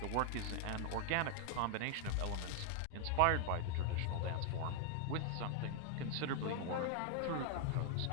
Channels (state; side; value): different; both; correlation 0.00